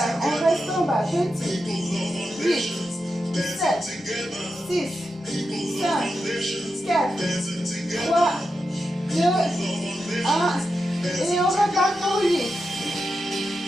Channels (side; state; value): both; normal; correlation 0.88